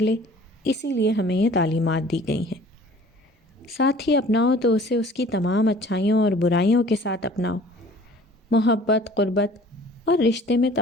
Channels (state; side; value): normal; both; correlation 0.49